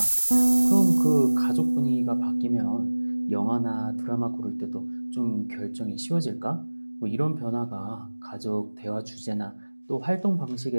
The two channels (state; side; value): inverted; both; correlation -1.00